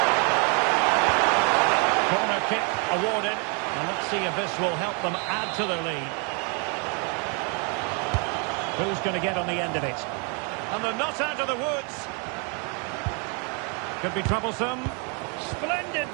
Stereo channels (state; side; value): quieter; left; 36.1 dB